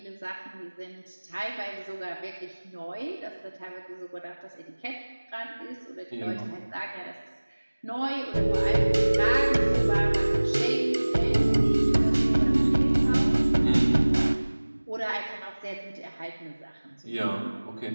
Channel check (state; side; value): inverted; both; correlation -1.00